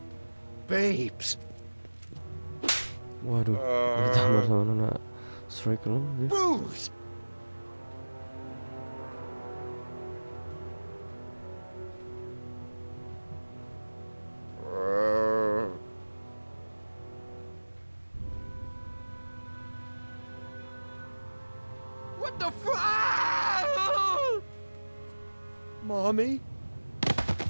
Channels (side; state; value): both; inverted; correlation -1.00